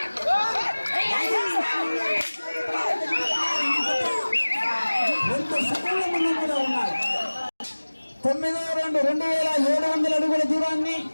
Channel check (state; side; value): inverted; both; correlation -1.00